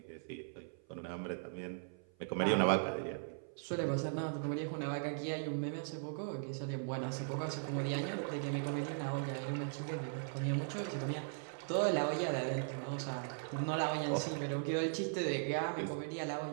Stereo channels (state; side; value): silent; left; 52 dB below the other